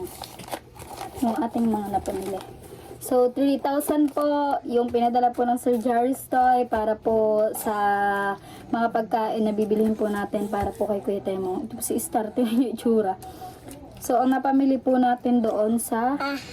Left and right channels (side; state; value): both; identical; correlation 1.00